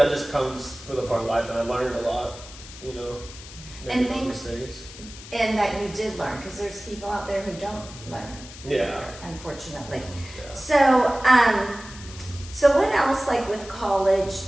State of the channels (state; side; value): noise; left; hiss, 16 dB below the sound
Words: just comes with a part of life, and I learned a lot, making those mistakes. And that you did learn, because there's people out there who don't learn. Yeah. Unfortunately. Yeah. So what else, like with college,